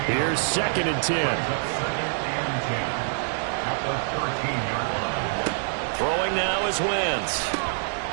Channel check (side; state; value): left; silent; digital silence